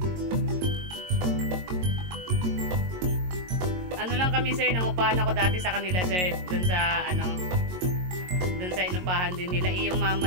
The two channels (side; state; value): left; late; 22 ms